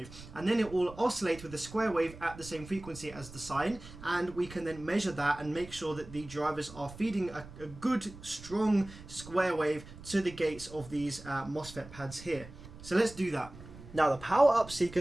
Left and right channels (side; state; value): right; noise; rumble, 16 dB below the sound